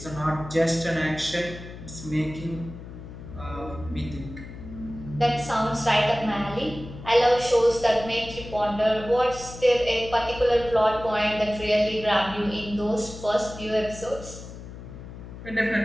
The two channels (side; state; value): left; noise; hum, 13 dB below the sound